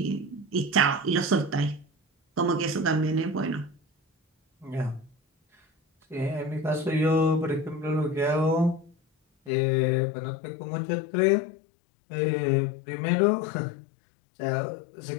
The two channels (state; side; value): drops out; right; at 9.5 s